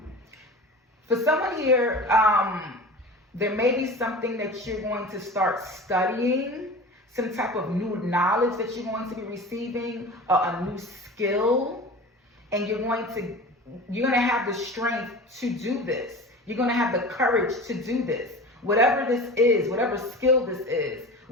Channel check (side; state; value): both; normal; correlation 0.35